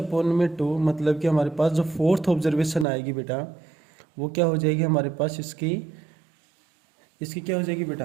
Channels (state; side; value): drops out; left; at 2.9 s